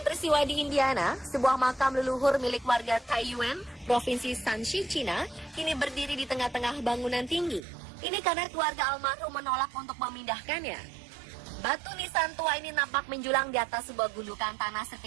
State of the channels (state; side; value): drops out; left; at 7.6 s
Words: peristiwa di Indiana, sebuah makam leluhur milik warga Taiyuan, Provinsi Shanxi, Cina, kini berdiri di tengah-tengah bangunan tinggi. Ini karena keluarga almarhum menolak untuk memindahkannya. Batu nisan tua ini nampak menjulang di atas sebuah gundukan tanah